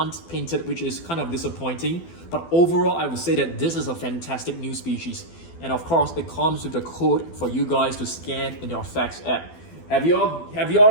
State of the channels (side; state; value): right; late; 12 ms